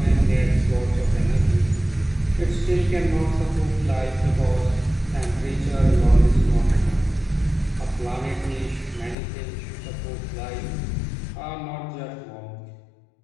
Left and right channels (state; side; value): drops out; right; at 9.2 s